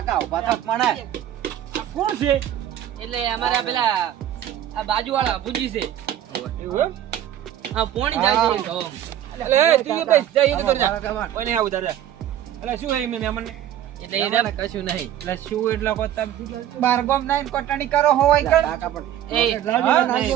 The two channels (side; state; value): left; quieter; 11.4 dB